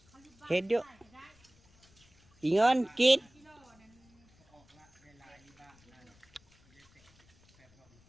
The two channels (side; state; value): left; noise; rumble, 30 dB below the sound